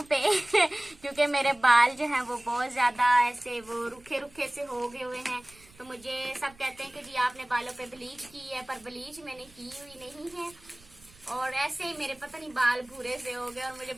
पे क्योंकि मेरे बाल जो हैं वो बहुत ज्यादा ऐसे वो रुखे रुखे से हो गए हुए हैं। तो मुझे सब कहते हैं कि जी आपने बालों पे ब्लीच की है, पर ब्लीच मैंने की हुई नहीं है और ऐसे ही मेरे पता नहीं बाल भूरे से हो गए और मुझे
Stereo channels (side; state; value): right; noise; rumble, 26 dB below the sound